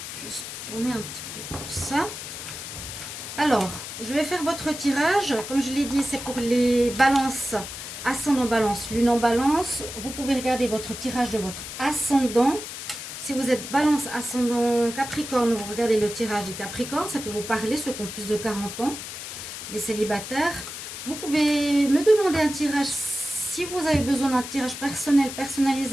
Juste tourner un petit peu tout ça. Alors, je vais faire votre tirage. Comme je l'ai dit, c'est pour les balances, ascendant balance, lune en balance. Vous pouvez regarder votre tirage de votre ascendant. Si vous êtes balance, ascendant, capricorne, vous regardez le tirage du capricorne. Ça peut vous parler, ceux qui ont plus de 40 ans, les célibataires. Vous pouvez me demander un tirage si vous avez besoin d'un tirage personnel,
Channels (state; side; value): noise; left; hiss, 9 dB below the sound